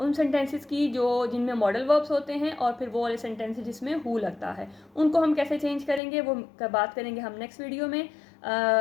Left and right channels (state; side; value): drops out; right; at 6.0 s